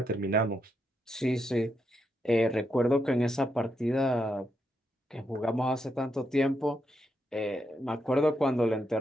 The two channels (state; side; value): normal; both; correlation 0.81